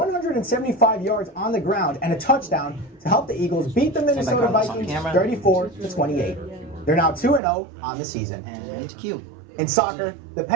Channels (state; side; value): drops out; left; at 7.4 s